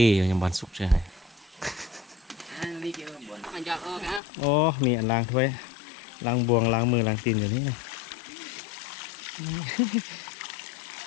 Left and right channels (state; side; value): drops out; right; at 4.2 s